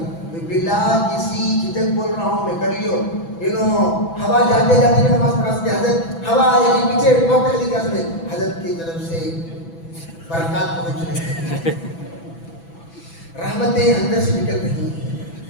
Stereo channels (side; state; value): right; late; 6.0 ms